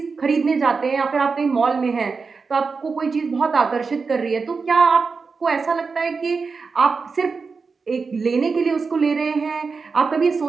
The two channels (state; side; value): quieter; left; 4.8 dB